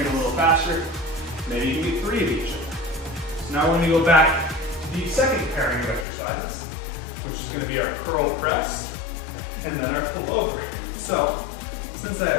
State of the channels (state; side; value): drops out; right; at 6.1 s